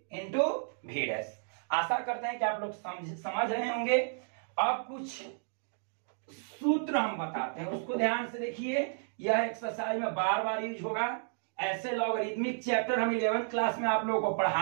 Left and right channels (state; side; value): silent; left; digital silence